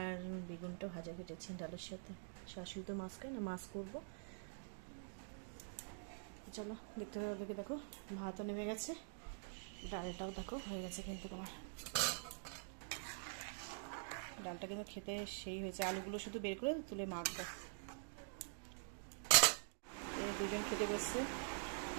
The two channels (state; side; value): silent; left; digital silence